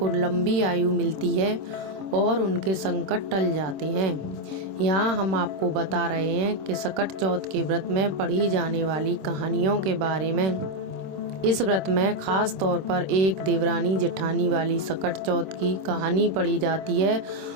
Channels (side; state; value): left; late; 26 ms